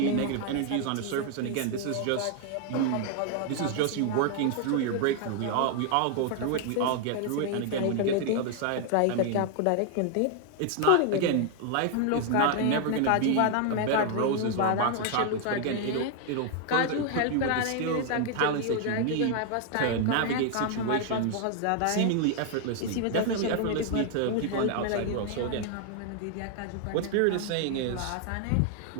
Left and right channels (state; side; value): different; both; correlation 0.00